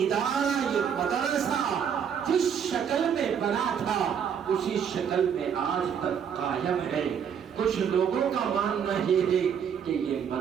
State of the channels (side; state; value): left; quieter; 7.7 dB